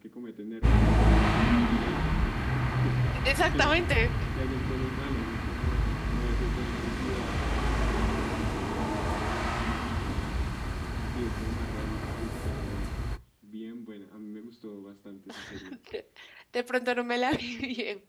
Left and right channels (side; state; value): both; identical; correlation 1.00